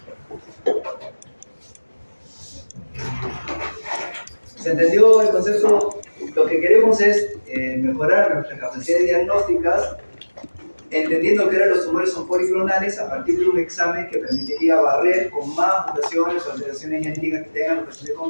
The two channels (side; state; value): both; inverted; correlation -1.00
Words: ¿Se entendió el concepto? Lo que queremos es mejorar nuestras capacidades diagnósticas, entendiendo que ahora los tumores son policlonales a partir de un examen que permitiría barrer con más mutaciones o alteraciones genéticas que tengan los pacientes